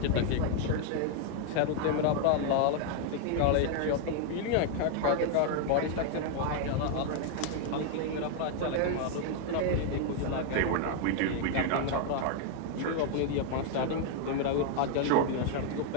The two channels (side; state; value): both; different; correlation 0.00